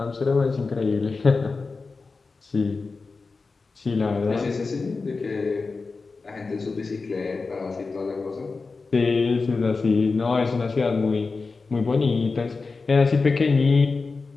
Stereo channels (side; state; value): right; quieter; 4.2 dB